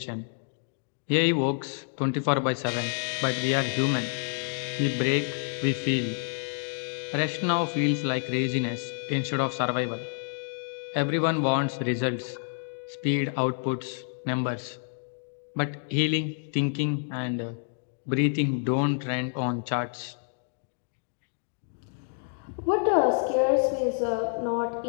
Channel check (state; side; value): silent; right; digital silence